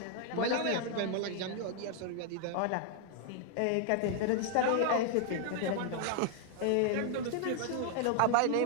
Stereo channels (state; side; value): different; both; correlation 0.00